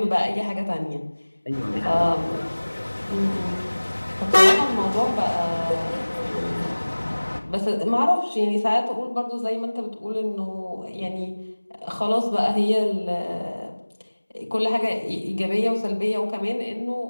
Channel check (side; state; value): both; inverted; correlation -1.00